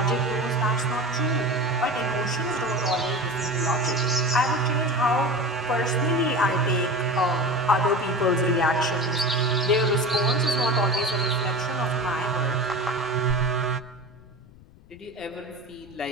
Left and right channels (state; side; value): noise; left; rumble, 24 dB below the sound